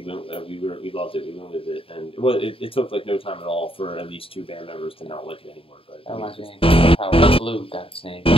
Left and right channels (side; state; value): right; late; 0.27 ms